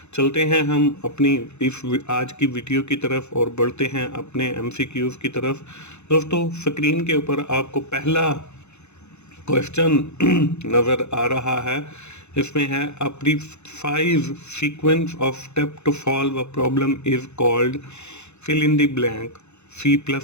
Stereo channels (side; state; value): right; late; 0.81 ms